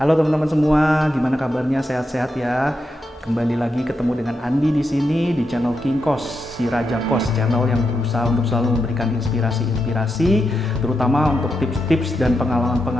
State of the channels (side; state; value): both; normal; correlation 0.86